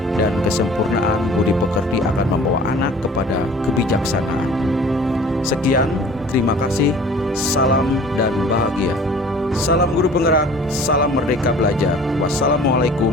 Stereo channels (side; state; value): both; normal; correlation 0.47